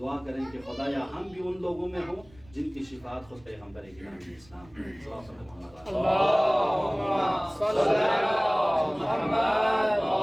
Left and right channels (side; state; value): right; noise; rumble, 26 dB below the sound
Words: کریں کہ خدایا ہم بھی ان لوگوں میں ہوں جن کی شفاعت خود پیغمبر گرامی اسلام